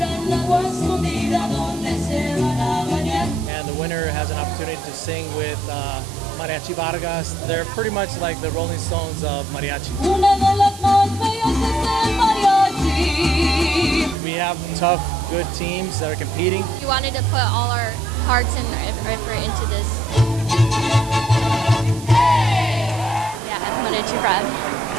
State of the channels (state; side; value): noise; right; hiss, 17 dB below the sound